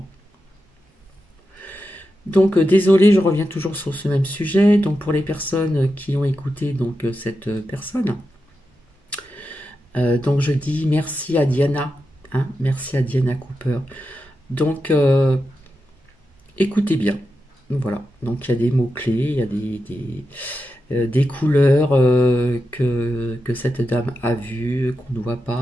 Donc désolé, je reviens toujours sur ce même sujet. Donc pour les personnes qui ont écouté cette personne, donc je dis merci à Diana, hein, merci à Diana Cooper. Donc écoutez bien. Voilà, donc il y a des mots-clés, il y a des couleurs que cette dame a vues, qu'on ne voit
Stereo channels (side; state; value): both; normal; correlation 0.89